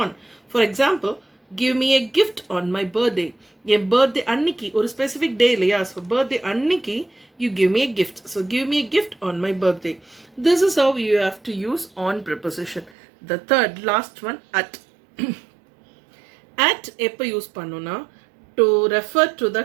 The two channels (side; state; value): left; drops out; at 12.9 s